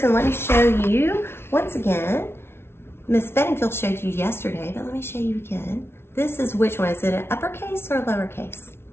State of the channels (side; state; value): right; late; 0.12 ms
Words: and let me show you once again. Miss Bedingfield showed you yesterday, but let me show you again. This is which one? Is it an uppercase or a lowercase?